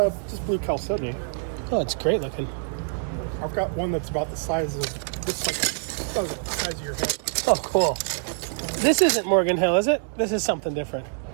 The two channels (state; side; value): silent; left; digital silence